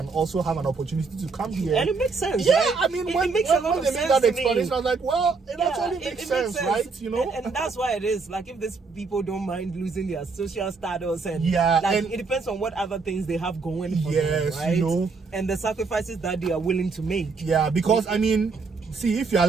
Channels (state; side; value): quieter; left; 4.5 dB